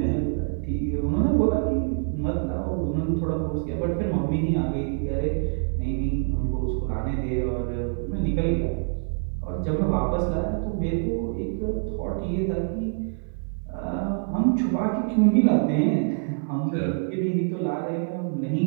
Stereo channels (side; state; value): left; silent; 61 dB below the other